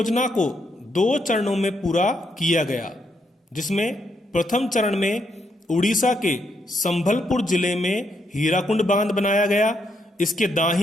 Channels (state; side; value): normal; both; correlation 0.77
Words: को 2 चरणों में पूरा किया गया, जिसमें प्रथम चरण में उड़ीसा के संबलपुर जिले में हीराकुंड बांध बनाया गया। इसके